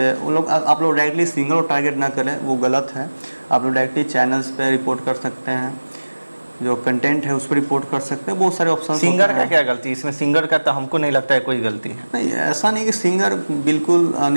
आप लोग डायरेक्टली सिंगर को टारगेट ना करें, वो गलत है। आप लोग डायरेक्टली चैनल्स पे रिपोर्ट कर सकते हैं, जो कंटेंट है उस पर रिपोर्ट कर सकते हैं। बहुत सारे ऑप्शन। सिंगर का क्या गलती इसमें? सिंगर का तो हमको नहीं लगता है कोई गलती है। नहीं, ऐसा नहीं कि सिंगर बिल्कुल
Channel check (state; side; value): inverted; both; correlation -1.00